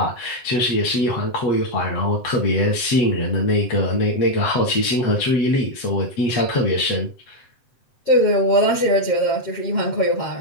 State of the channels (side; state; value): right; late; 7.7 ms